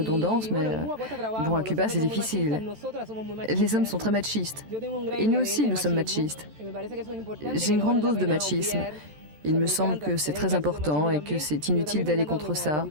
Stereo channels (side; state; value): left; late; 13 ms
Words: mais bon, à Cuba, c'est difficile. Les hommes sont très machistes. Et nous aussi, nous sommes machistes. J'ai une grande dose de machisme. Il me semble que c'est très important et que c'est inutile d'aller contre ça.